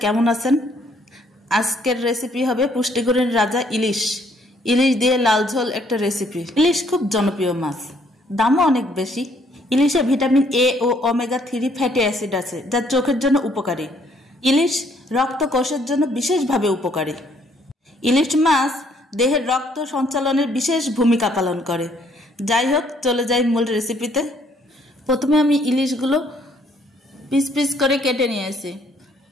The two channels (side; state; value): both; normal; correlation 0.66